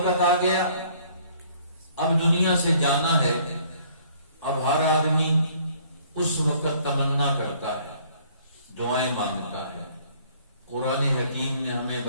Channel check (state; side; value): inverted; both; correlation -0.59